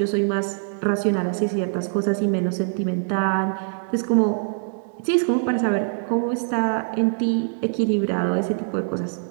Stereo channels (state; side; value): silent; left; digital silence